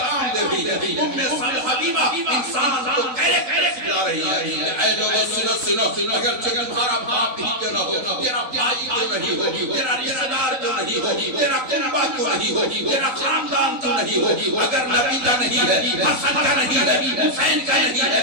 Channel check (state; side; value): late; left; 3.9 ms